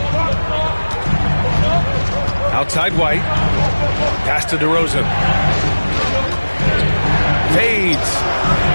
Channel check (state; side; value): inverted; both; correlation -1.00